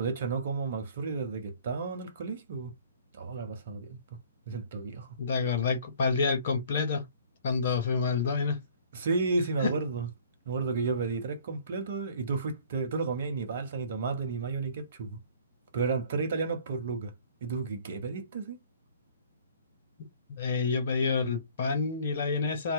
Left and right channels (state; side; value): inverted; both; correlation -0.53